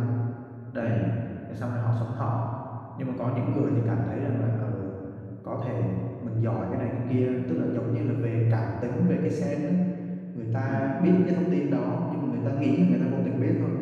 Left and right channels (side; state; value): both; identical; correlation 1.00